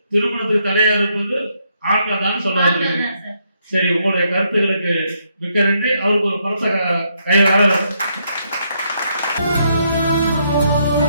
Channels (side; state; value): both; inverted; correlation -0.75